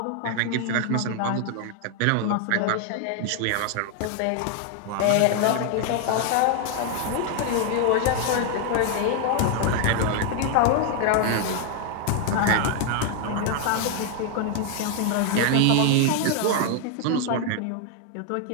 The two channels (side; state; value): both; different; correlation 0.00